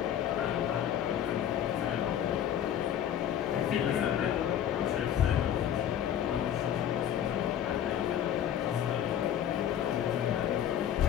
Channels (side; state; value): right; quieter; 10.1 dB